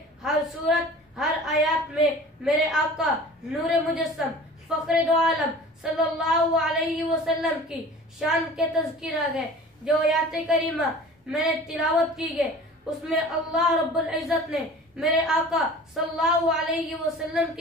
हर सूरत, हर आयत में मेरे आका नूर मुजस्सम फ़ख्र दो आलम सल्लल्लाहु अलैहि वसल्लम की शान के तज़किरा है। जो आयत करीमा मैंने तिलावत की है उसमें अल्लाह रब्बुल इज़्ज़त ने मेरे आका सल्लल्लाहु अलैहि वसल्लम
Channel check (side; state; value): both; normal; correlation 0.42